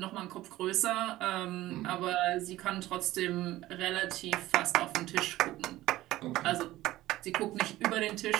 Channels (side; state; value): left; quieter; 16.2 dB